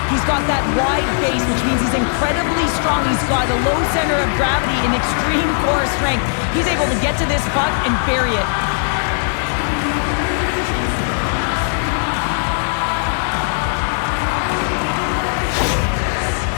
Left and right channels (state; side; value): silent; right; digital silence